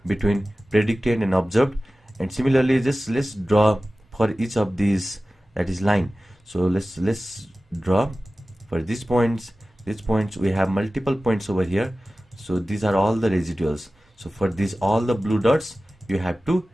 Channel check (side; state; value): both; normal; correlation 0.96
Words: between predicted and observed, and similarly just let's draw for each of these, that is line. So let's draw for these points. These points, we have multiple points over here, so these are all the residuals. So for these all the blue dots, you have to